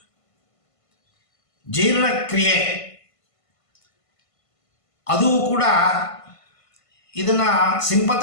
ಜೀರ್ಣಕ್ರಿಯೆ ಅದು ಕೂಡ ಇದನ್ನು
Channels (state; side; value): late; right; 1.5 ms